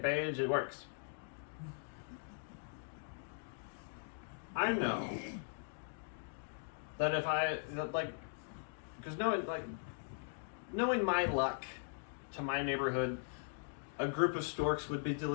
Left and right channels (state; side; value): silent; right; digital silence